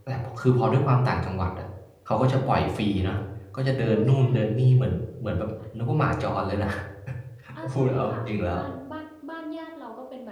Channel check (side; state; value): both; identical; correlation 1.00